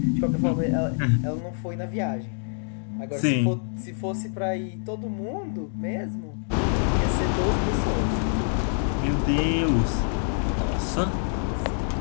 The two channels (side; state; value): right; silent; digital silence